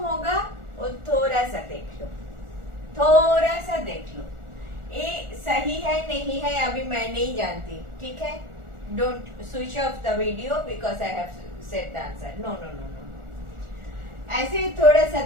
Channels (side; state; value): left; late; 1.4 ms